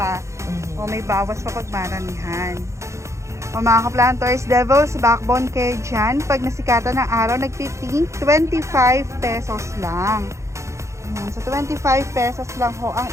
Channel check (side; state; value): left; late; 0.14 ms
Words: O, may bawas pa pag maramihan. O mga ka-planters, Devil's Backbone kayo dyan. Pag nasikatan ng araw, nagtiting 25 pesos lang. So, 25 pesos lang ho ang